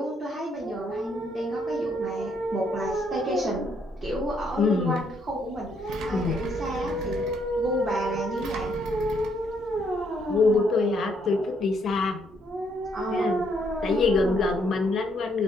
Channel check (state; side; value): normal; both; correlation 0.71